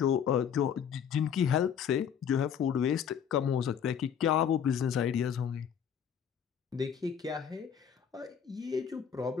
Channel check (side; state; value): right; quieter; 8.1 dB